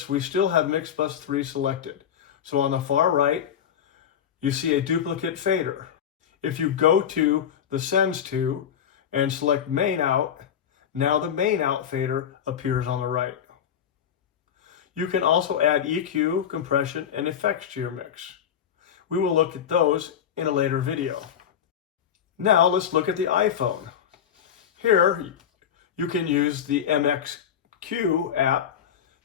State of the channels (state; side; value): quieter; right; 8.8 dB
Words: we still have mix bus 3 selected. So on the far right, you see a duplicate fader. If you go to the Sends to and select Main Out, now the Main Out fader appears on the right. You can also add EQ, compression, and effects to your mix. We will look at those in a later video. Now let's look at the iPhone. Here you can use the MXQ app